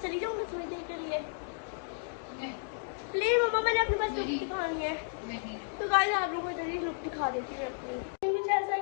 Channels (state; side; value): silent; right; digital silence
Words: जाऊँगी थोड़ी देर के लिए? प्लीज मम्मा, मैंने अपने पास लुक दिखानी है। तो गाइस आप लोगों को जल्दी लुक दिखा देती हूँ अपनी। कुछ ऐसा है